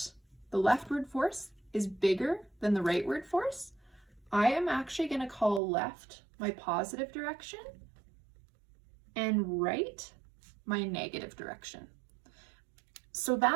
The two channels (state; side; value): drops out; left; at 5.6 s